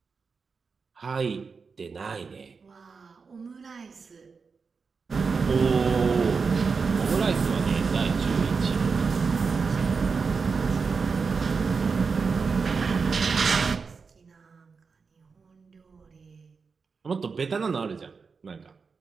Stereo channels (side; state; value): left; quieter; 5.0 dB